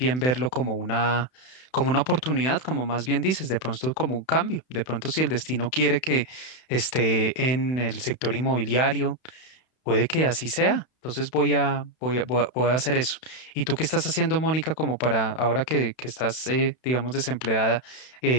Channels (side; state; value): right; late; 31 ms